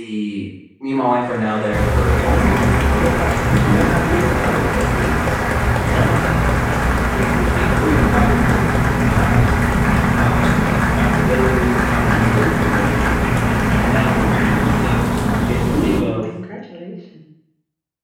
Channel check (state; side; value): identical; both; correlation 1.00